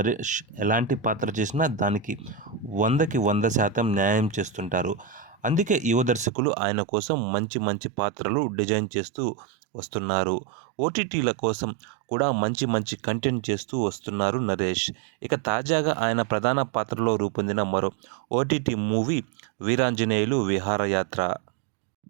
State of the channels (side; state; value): left; drops out; at 6.3 s